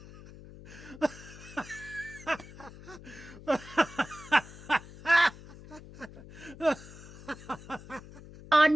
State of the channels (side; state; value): left; noise; hum, 17 dB below the sound